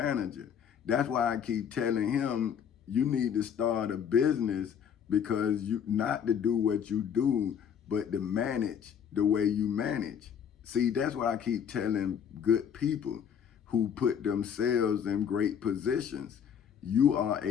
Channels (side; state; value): right; quieter; 8.0 dB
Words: That's why I keep telling him you need to start a business, because you not to do what you do, but to manage the way you manage. See, that's what I keep telling good people who put themselves in great positions. You are